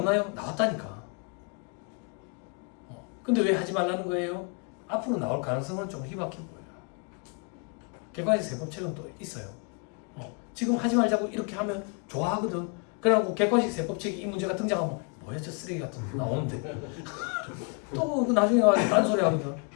나왔다니까. 근데 왜 하지 말라는 거예요? 앞으로 나올 가능성은 좀 희박해 보여요. 객관식 세법책은 또 있어요. 지금 하지 말자고 이렇게 하면 좋아하거든. 그래갖고 객관식 세법책이 이 문제가 등장하면 뭐야 저 쓰레기 같은 거 나오는데 또 나중에 가서 딴소리 하거든.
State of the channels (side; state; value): right; quieter; 36.4 dB